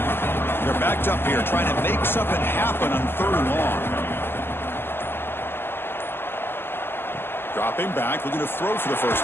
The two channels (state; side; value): late; right; 0.11 ms